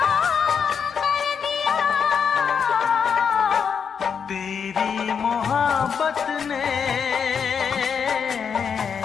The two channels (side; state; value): right; quieter; 6.8 dB